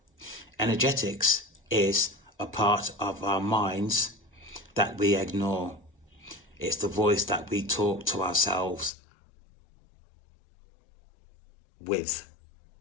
Energetics is a part of our minds that we ignore. It's the voice that we talk to ourselves with.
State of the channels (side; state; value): right; drops out; at 8.9 s